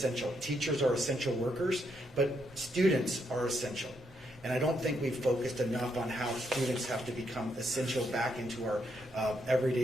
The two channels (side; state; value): both; normal; correlation 0.77